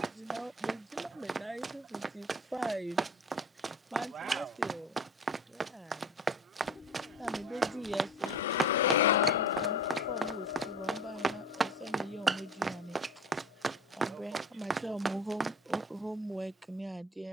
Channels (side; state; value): both; normal; correlation 0.39